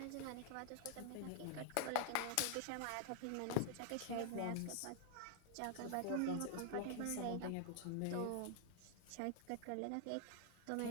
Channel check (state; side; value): different; both; correlation 0.00